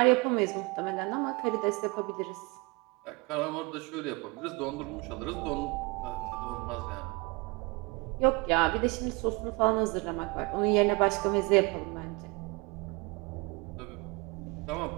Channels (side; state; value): left; quieter; 27.2 dB